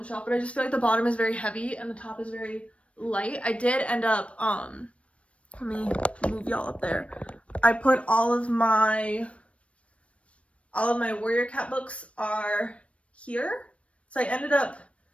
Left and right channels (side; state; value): right; late; 0.062 ms